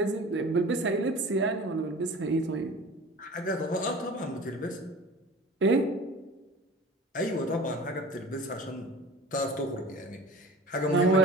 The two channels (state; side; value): normal; both; correlation 0.39